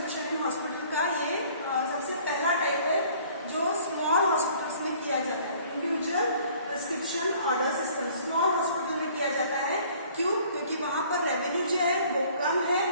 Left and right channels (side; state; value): both; inverted; correlation -0.55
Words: इन हॉस्पिटल का ये सबसे पहला टाइप है जो स्मॉल हॉस्पिटल्स में किया जाता है। Individual prescription order system small hospital में किया जाता है। क्यों? क्योंकि वहां पर रेवेन्यू जो है वो कम है,